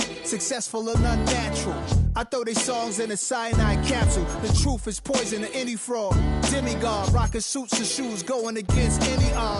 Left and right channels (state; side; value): identical; both; correlation 1.00